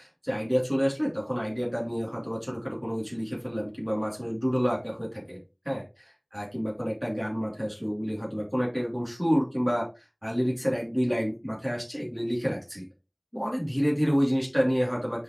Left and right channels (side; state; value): both; identical; correlation 1.00